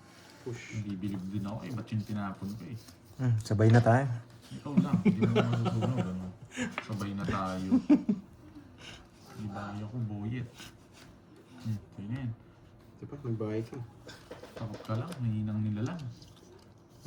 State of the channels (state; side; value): identical; both; correlation 1.00